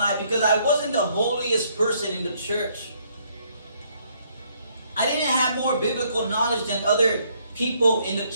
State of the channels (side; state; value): both; inverted; correlation -0.68